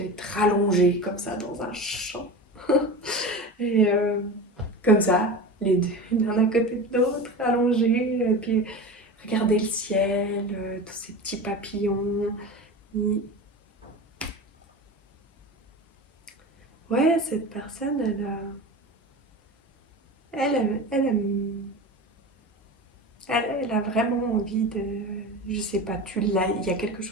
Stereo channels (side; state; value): both; normal; correlation 0.29